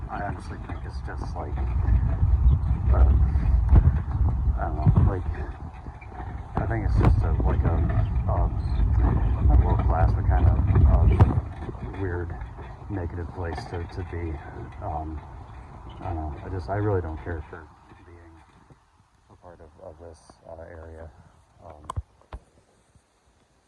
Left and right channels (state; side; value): identical; both; correlation 1.00